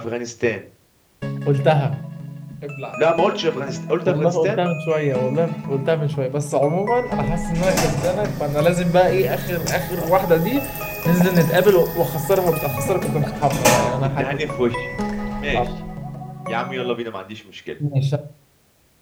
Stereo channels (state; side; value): identical; both; correlation 1.00